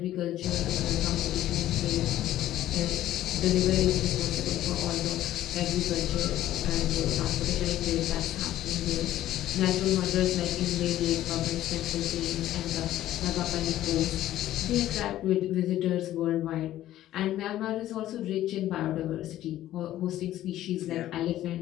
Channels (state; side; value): quieter; right; 13.5 dB